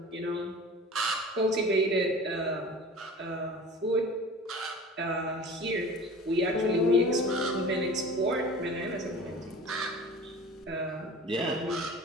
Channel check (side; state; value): both; normal; correlation 0.39